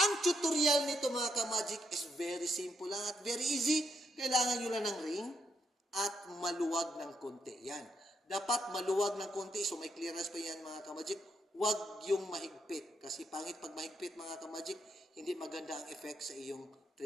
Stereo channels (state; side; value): normal; both; correlation 0.78